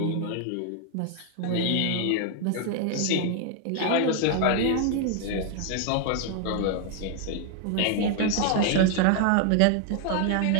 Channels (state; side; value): different; both; correlation 0.00